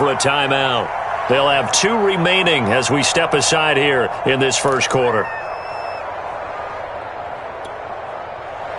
a timeout. They'll have 2 remaining as we step aside here in this first quarter.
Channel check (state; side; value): identical; both; correlation 1.00